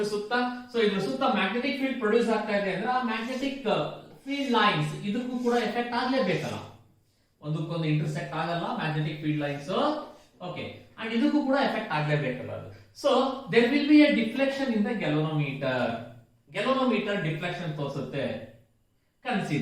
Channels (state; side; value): identical; both; correlation 1.00